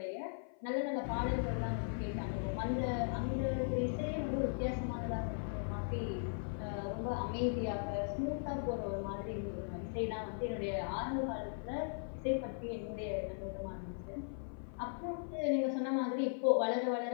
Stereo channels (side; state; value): right; silent; 52 dB below the other